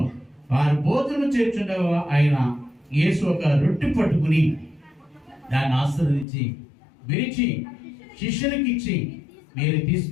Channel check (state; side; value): drops out; right; at 6.2 s